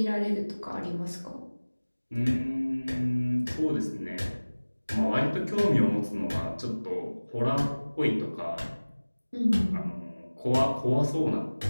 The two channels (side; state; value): both; inverted; correlation -1.00